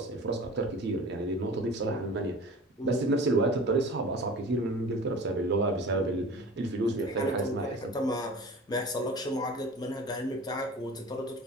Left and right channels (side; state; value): both; normal; correlation 0.40